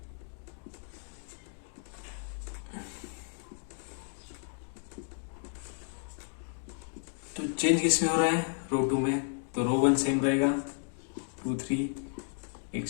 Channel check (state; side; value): silent; right; 56 dB below the other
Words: तो चेंज किस में हो रहा है, रो 2 में। तो रो 1 सेम रहेगा, 2 3